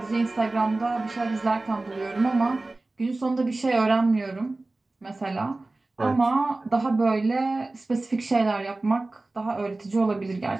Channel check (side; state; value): left; quieter; 3.1 dB